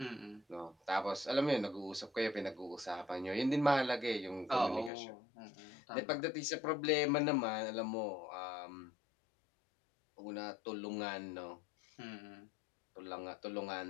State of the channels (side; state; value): right; drops out; at 4.9 s